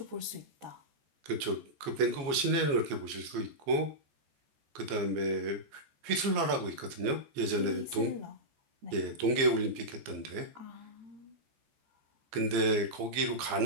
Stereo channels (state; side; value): late; left; 15 ms